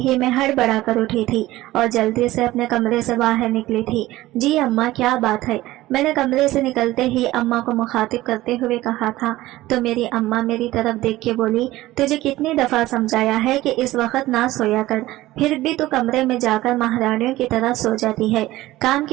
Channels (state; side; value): quieter; left; 16.9 dB